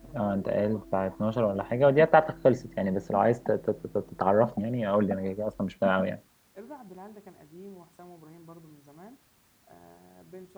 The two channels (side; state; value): both; identical; correlation 1.00